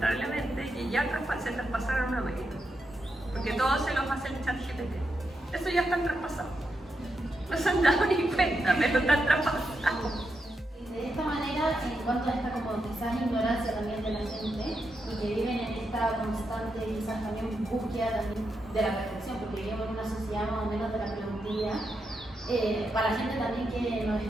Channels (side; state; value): both; normal; correlation 0.84